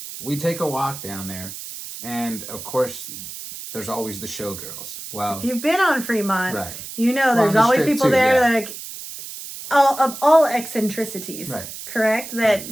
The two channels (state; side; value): noise; right; hiss, 11 dB below the sound